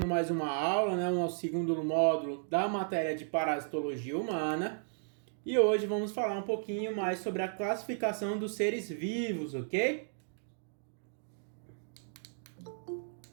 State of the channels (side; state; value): left; silent; digital silence